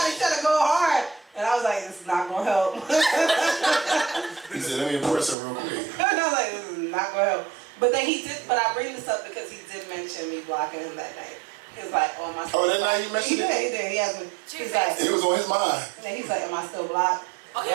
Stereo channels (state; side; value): drops out; left; at 5.4 s